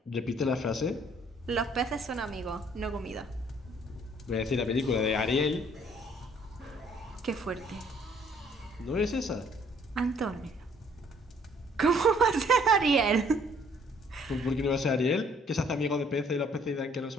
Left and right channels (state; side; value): normal; both; correlation 0.62